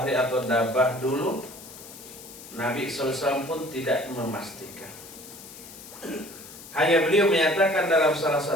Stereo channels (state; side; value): noise; left; hiss, 16 dB below the sound